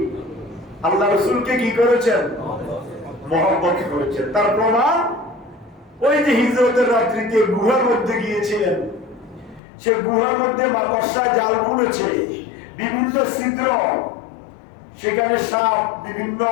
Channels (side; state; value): right; drops out; at 9.6 s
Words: আল্লাহ রাসূলকে কি করেছেন? মহব্বত করেছেন। তার প্রমাণ ওই যে হিজরতের রাত্রিতে গুহার মধ্যে গিয়েছিলেন, সে গুহার মধ্যে মাকড়সা জাল বুনেছে, বিভিন্ন ছিদ্র, সেখানে সাপ, বিভিন্ন